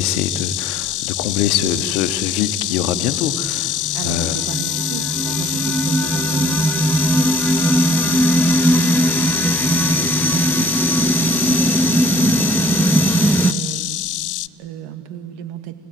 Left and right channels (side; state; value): both; normal; correlation 0.55